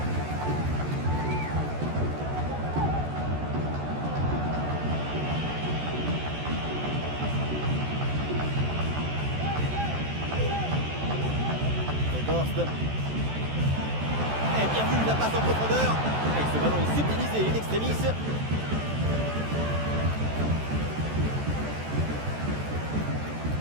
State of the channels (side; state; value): left; late; 14 ms